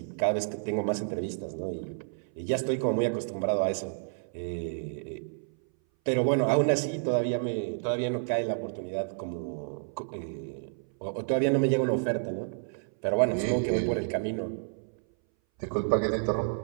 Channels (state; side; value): silent; left; 58 dB below the other